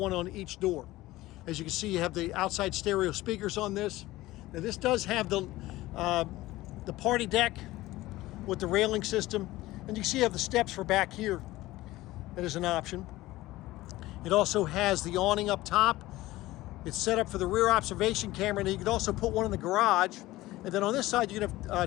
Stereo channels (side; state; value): right; quieter; 17.7 dB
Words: on each door. As you can see, you have the outside stereo speakers on this. Now this does have the party deck with the railing system. And you see you have the steps for back here. That is an option. It also has the awning up top. It's set up for the rear observation camera, and you can also put one in the garage. And then on this side, you can